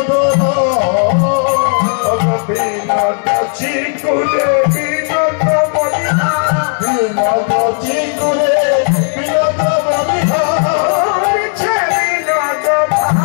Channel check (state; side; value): silent; right; 58 dB below the other